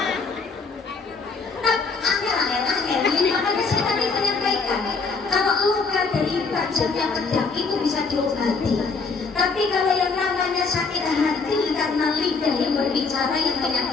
Makanya saya tadi menyampaikan, kalau luka dari tajamnya pedang itu bisa diobati. Tapi kalau yang namanya sakit hati karena lidah yang berbicara yang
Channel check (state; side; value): quieter; right; 4.5 dB